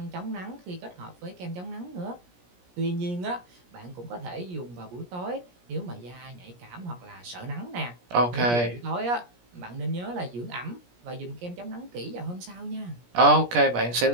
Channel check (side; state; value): left; late; 17 ms